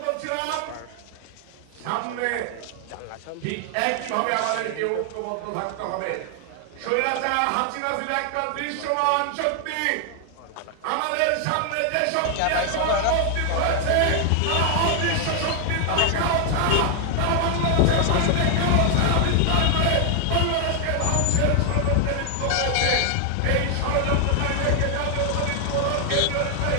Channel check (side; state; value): both; different; correlation 0.00